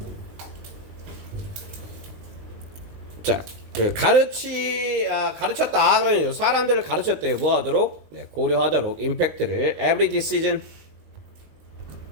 자, 가르쳤다. 그러니까 사람들을 가르쳤대요. 뭐 하도록? 네, 고려하도록. 임팩트를 every decision.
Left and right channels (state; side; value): late; left; 20 ms